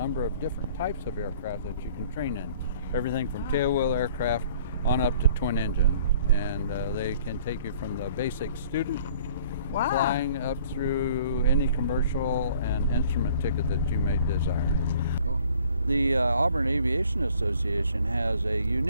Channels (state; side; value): inverted; both; correlation -0.54